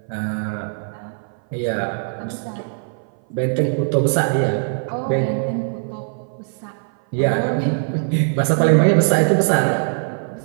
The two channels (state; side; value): silent; left; 57 dB below the other